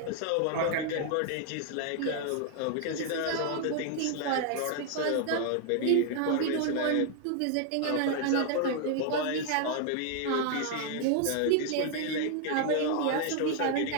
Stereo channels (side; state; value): both; different; correlation 0.00